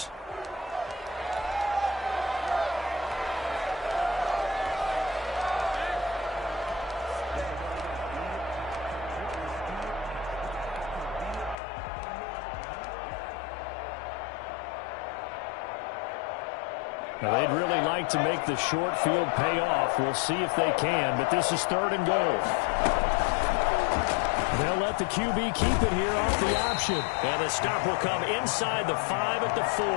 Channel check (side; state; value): right; drops out; at 11.6 s